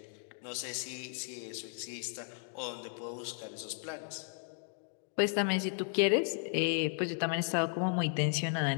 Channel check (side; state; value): right; silent; 54 dB below the other